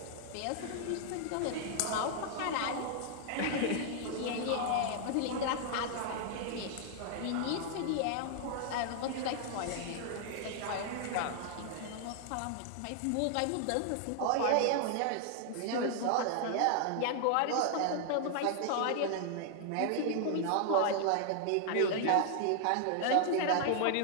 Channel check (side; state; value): both; different; correlation 0.00